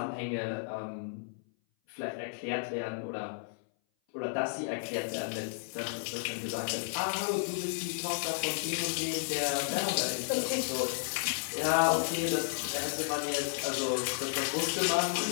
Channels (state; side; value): silent; right; 56 dB below the other